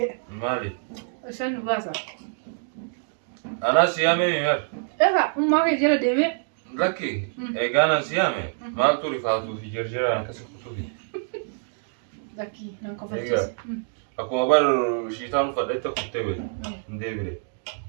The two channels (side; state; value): left; silent; digital silence